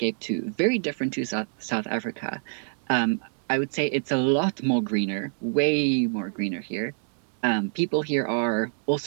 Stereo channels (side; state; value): left; silent; digital silence